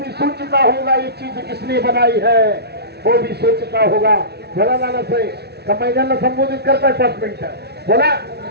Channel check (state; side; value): late; left; 0.48 ms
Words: सोचता होगा ये चीज किसने बनाई है, वो भी सोचता होगा. बोला लाला साहेब, का मैदानाला संबोधित करताय 5 मिनिटं बोला.